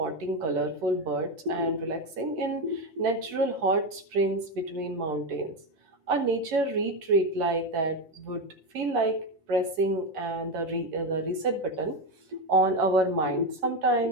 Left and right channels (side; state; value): left; late; 6.2 ms